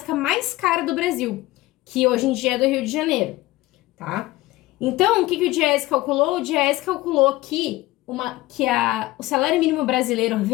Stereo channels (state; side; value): quieter; right; 18.3 dB